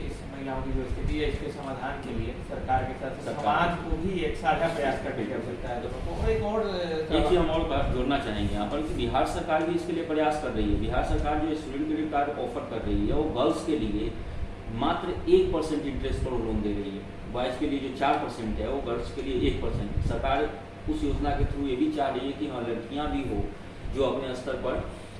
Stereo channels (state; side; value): identical; both; correlation 1.00